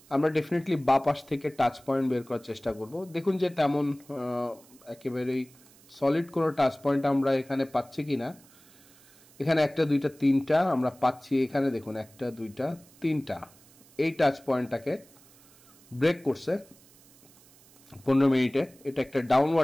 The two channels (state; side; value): noise; right; hiss, 26 dB below the sound